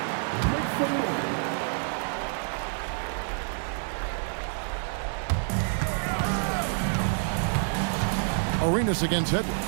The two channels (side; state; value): left; silent; 59 dB below the other